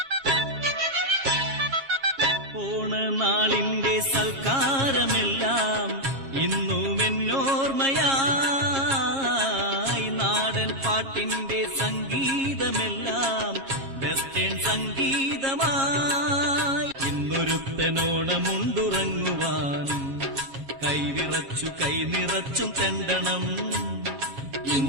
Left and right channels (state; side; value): late; left; 7.4 ms